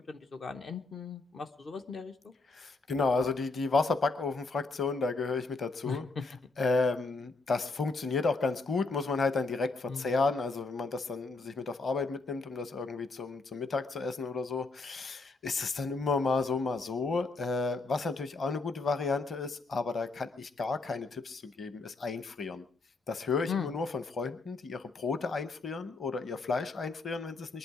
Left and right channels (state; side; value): quieter; right; 3.7 dB